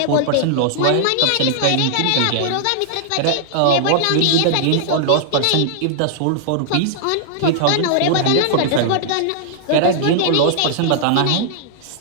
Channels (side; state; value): both; different; correlation -0.01